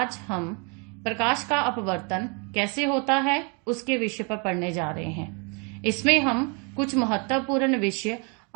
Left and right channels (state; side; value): quieter; left; 34.8 dB